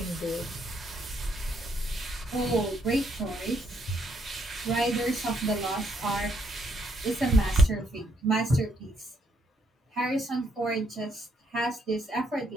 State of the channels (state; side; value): normal; both; correlation 0.73